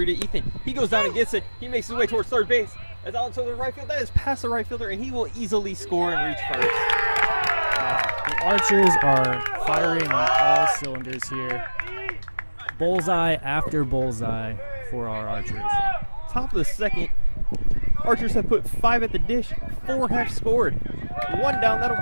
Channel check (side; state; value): both; inverted; correlation -1.00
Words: to Ethan. He goes down and gets it. He makes his way towards third base. That's out to the right field. That is past the right fielder, and he will easily score and reach first. The Archers are firing on all cylinders here. Bullseye after bullseye for our Archers. Top of the second, Archers have put 5 at the dish. 4 have scored. 1 down.